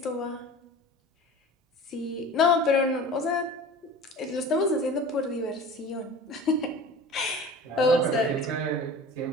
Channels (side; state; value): both; normal; correlation 0.38